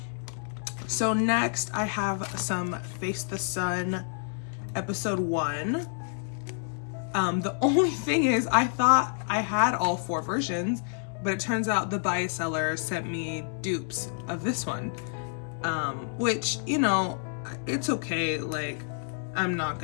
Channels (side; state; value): right; silent; digital silence